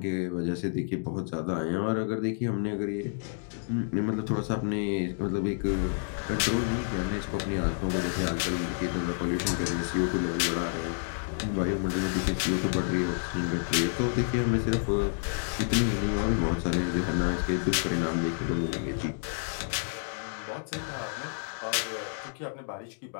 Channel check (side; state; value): right; silent; digital silence